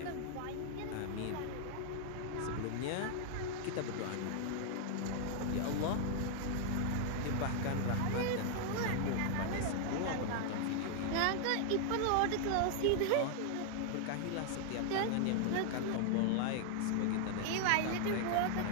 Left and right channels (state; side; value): different; both; correlation 0.00